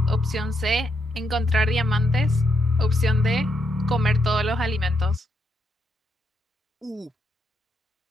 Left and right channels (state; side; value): normal; both; correlation 0.79